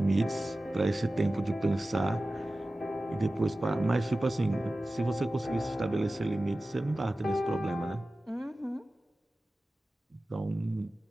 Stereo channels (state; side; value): normal; both; correlation 0.96